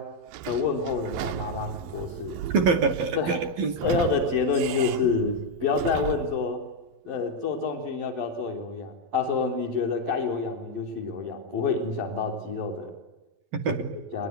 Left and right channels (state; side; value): late; left; 12 ms